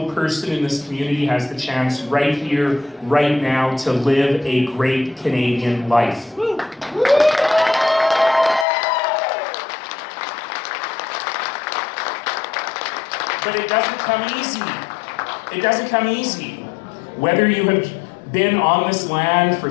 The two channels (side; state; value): right; drops out; at 8.7 s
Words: person in this community has the chance right here, right now, to live a great Canadian life. But it doesn't come easy. It doesn't come easy. Whether you have been on this land for